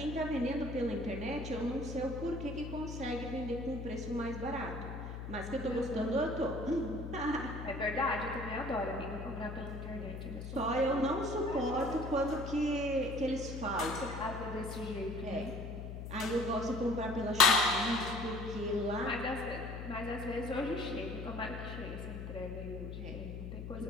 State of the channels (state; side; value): noise; left; hum, 7 dB below the sound